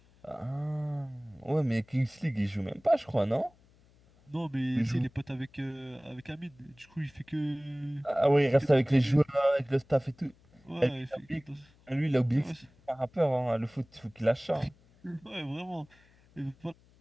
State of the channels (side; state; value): left; noise; hum, 30 dB below the sound